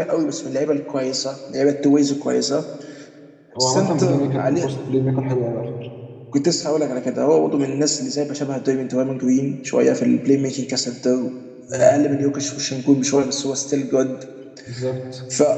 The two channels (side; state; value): both; identical; correlation 1.00